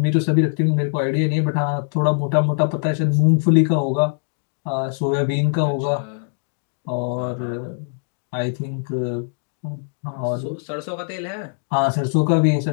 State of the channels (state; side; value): silent; right; digital silence